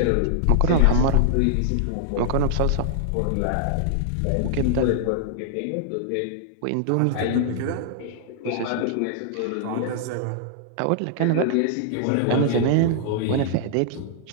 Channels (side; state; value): both; different; correlation -0.01